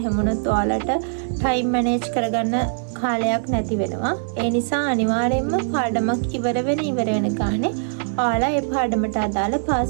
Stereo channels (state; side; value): silent; left; 64 dB below the other